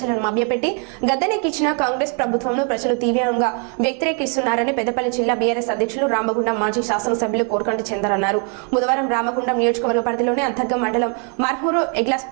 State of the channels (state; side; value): quieter; left; 39.2 dB